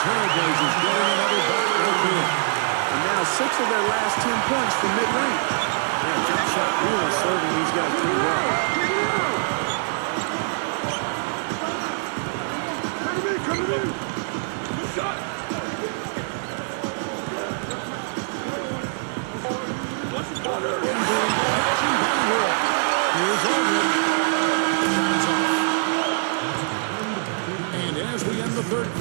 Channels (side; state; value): left; silent; digital silence